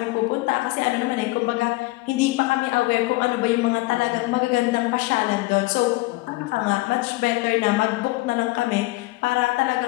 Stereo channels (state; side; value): quieter; right; 21.5 dB